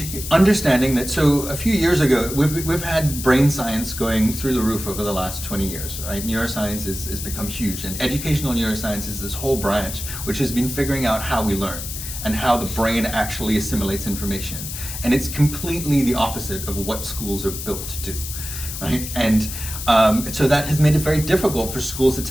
understanding that. So a few years ago, we've had brain science going through the roof over the last 20 years, right? Neuroscience has become huge, and educational neuroscience is this whole branch which has been figuring out how we learn. and how the brain actually assimilates information. And it's completely the opposite of what schools are built to do, right? And so that has made it very difficult for schools to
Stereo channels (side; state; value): left; noise; hiss, 8 dB below the sound